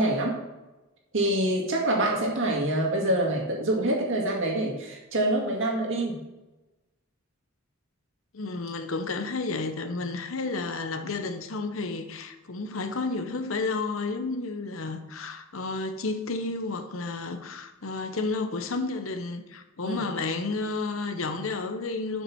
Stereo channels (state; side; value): normal; both; correlation 0.11